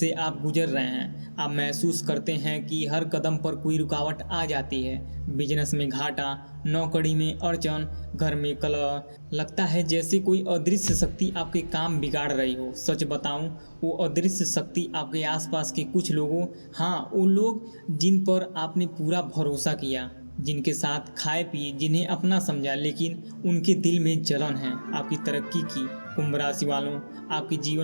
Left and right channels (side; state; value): both; inverted; correlation -1.00